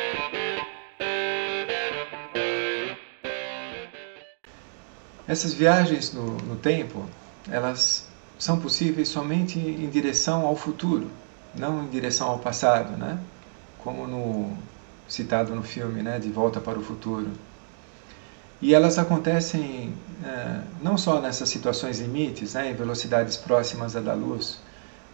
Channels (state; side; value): silent; left; digital silence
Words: Essas viagens no tempo, elas são possíveis somente em direção ao futuro, não em direção ao passado, né? Como citado no filme, né? De Volta para o Futuro. E elas acontecem não só nessas situações limites, né? Em velocidades próximas à da luz,